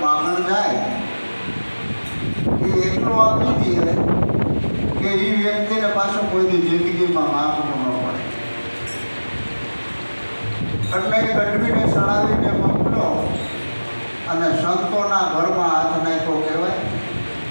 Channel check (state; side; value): inverted; both; correlation -1.00